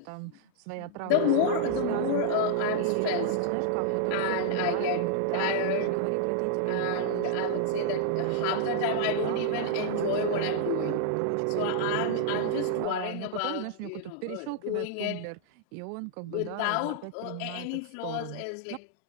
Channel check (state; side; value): different; both; correlation -0.01